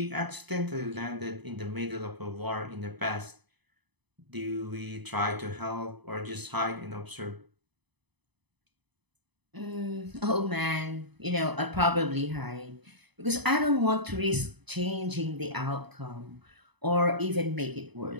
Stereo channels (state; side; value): late; left; 0.99 ms